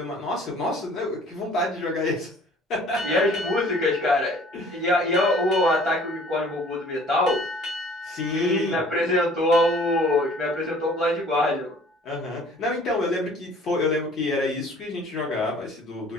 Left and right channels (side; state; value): both; normal; correlation 0.52